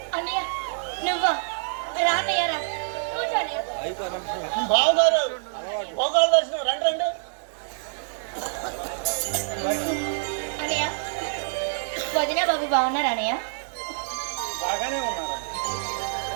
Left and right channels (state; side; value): silent; left; digital silence